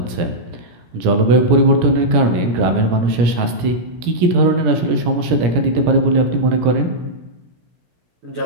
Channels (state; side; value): late; left; 17 ms